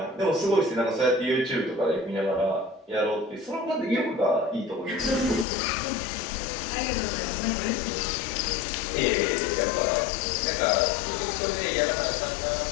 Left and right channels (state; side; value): drops out; right; at 5.5 s